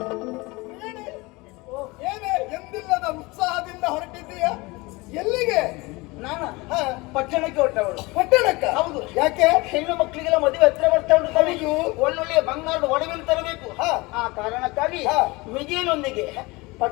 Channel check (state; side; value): quieter; right; 23.7 dB